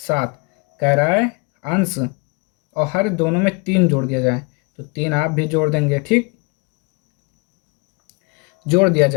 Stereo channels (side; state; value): right; quieter; 30.4 dB